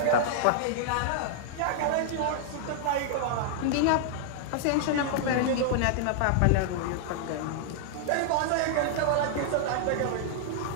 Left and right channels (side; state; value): both; different; correlation -0.01